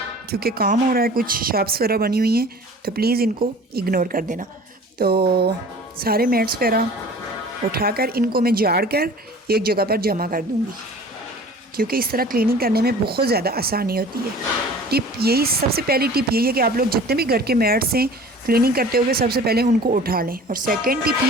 क्योंकि काम हो रहा है, कुछ शॉप्स वगैरह बनी हुई हैं, तो प्लीज़ इनको इग्नोर कर देना। तो सारे मैट्स वगैरह उठाकर इनको मैं झाड़ कर एक जगह पर जमा कर दूँगी, क्योंकि इस तरह क्लीनिंग करने में बहुत ज़्यादा आसानी होती है। सबसे पहली टिप यही है कि आप लोग जितने भी घर के मैट्स हैं क्लीनिंग करते हुए सबसे पहले उनको उठा लें। और सेकेंड टिप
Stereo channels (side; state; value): both; normal; correlation 0.44